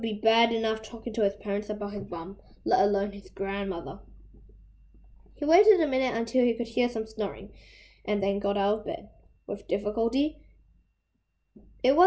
bad enough talking to his parents about his bum, let alone his grandmother. He waited a minute until he could hear some snoring, and then got out of bed. With difficulty. It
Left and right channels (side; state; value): both; identical; correlation 1.00